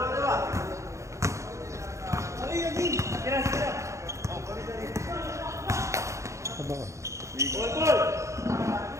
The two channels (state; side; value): late; left; 0.15 ms